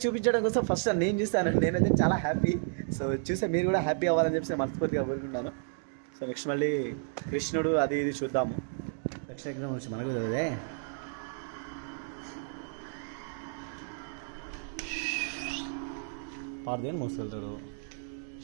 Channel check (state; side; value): silent; left; digital silence